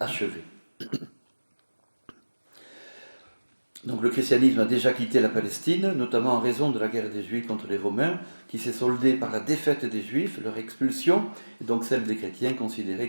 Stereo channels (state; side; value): inverted; both; correlation -1.00